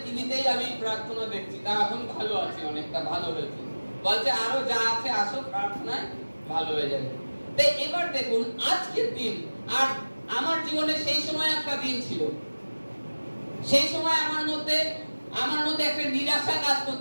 টিভিতেই আমি প্রার্থনা দেখছি, তা এখন ভালো আছি, অনেকটা ভালো হয়েছে। বলছে আরো যা আছে আসো প্রার্থনায়, ভালো হয়ে যাবে। তাই এবার দেখুন আজকের দিন, আর আমার জীবনে সেই সময় একটা দিন ছিল, সেই সময় আমার মধ্যে একটা নিরাশা কাজ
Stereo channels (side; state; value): both; inverted; correlation -1.00